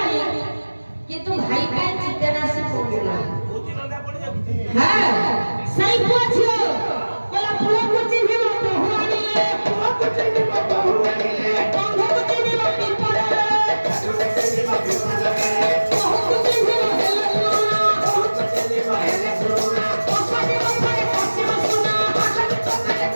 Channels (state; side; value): inverted; both; correlation -1.00